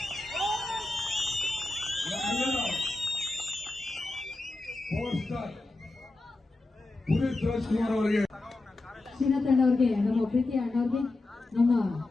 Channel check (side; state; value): right; quieter; 3.0 dB